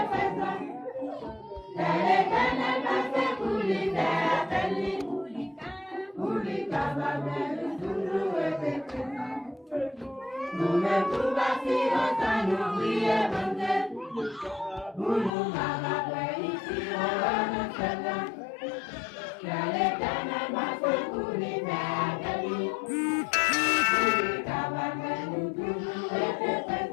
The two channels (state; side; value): drops out; right; at 15.3 s